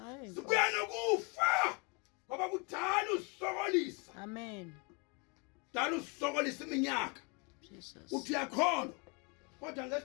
sibuya nokufa ngoba kudala usokolisa Amen. kudala usokolisa iminyaka Jesus. uthi uyakholwa kodwa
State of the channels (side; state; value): right; quieter; 31.6 dB